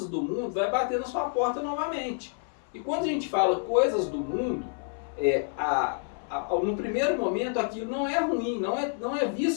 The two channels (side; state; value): right; silent; 58 dB below the other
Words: do mundo vai bater na sua porta novamente. E quando a gente fala coisas do mundo, no primeiro momento aquilo não é ruim, não é